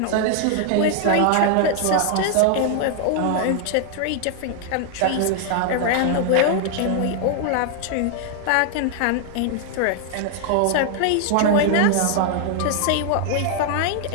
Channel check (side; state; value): both; different; correlation 0.00